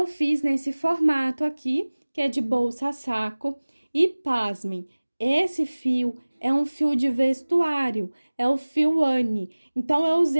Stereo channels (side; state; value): both; inverted; correlation -1.00